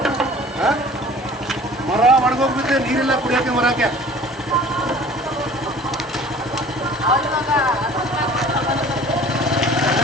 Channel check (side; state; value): both; normal; correlation 0.47